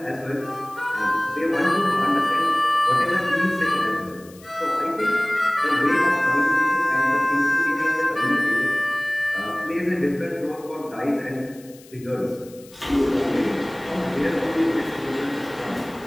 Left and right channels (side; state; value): left; noise; hiss, 24 dB below the sound